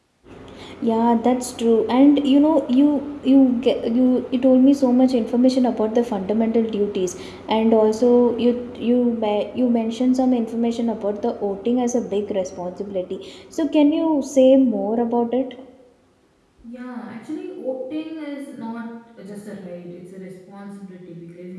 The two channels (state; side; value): identical; both; correlation 1.00